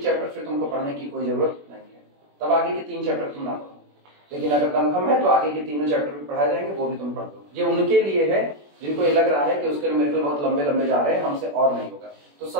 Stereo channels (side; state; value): left; late; 21 ms